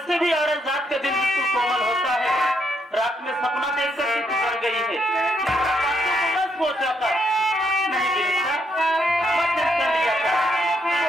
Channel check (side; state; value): both; normal; correlation 0.76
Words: भी औरत जात का दिल बिल्कुल कोमल होता है। रात में सपना देख कर